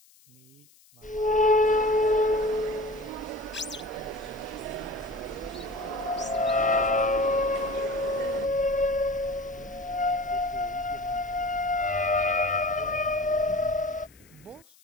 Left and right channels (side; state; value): left; noise; hiss, 28 dB below the sound